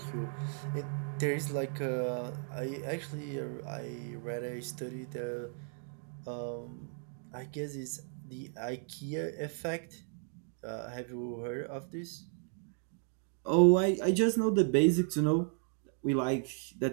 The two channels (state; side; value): silent; left; 55 dB below the other